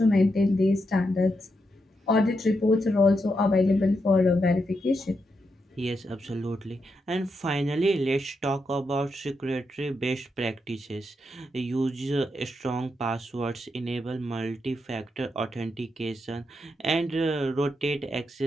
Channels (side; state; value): both; normal; correlation 0.83